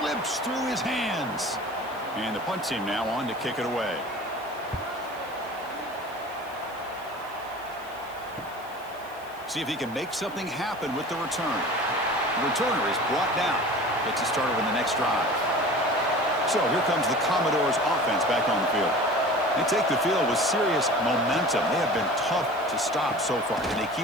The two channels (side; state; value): right; noise; hiss, 24 dB below the sound